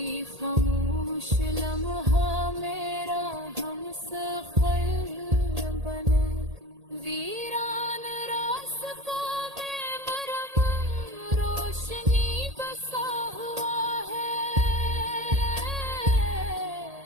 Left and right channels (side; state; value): left; late; 1.8 ms